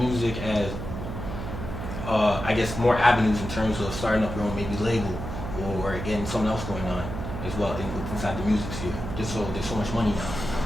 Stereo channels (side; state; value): right; noise; hum, 6 dB below the sound